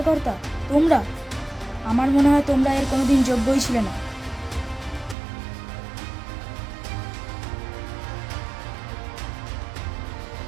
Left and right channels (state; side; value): drops out; left; at 5.2 s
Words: তোমরা? আমার মনে হয় তোমরা এর কোনোদিন যোগ্যই ছিলে না।